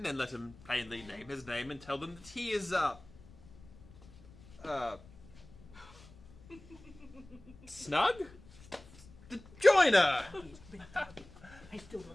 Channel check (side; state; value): left; noise; rumble, 21 dB below the sound